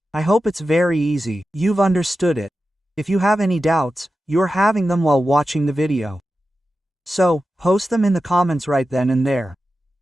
I hope it's very easy, you've understood it. If you have any doubts, you're having them while watching the video. So, post them in the comments right then and there.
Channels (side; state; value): both; normal; correlation 0.92